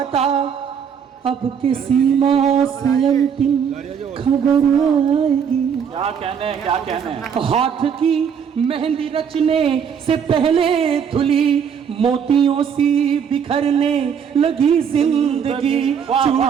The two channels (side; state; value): left; quieter; 7.5 dB